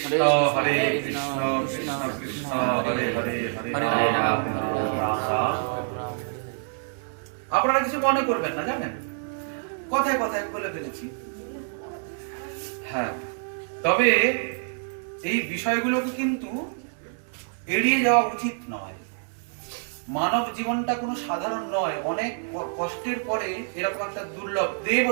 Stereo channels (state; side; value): silent; left; 60 dB below the other